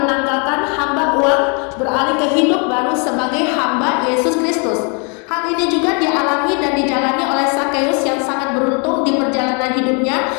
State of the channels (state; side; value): quieter; right; 35.8 dB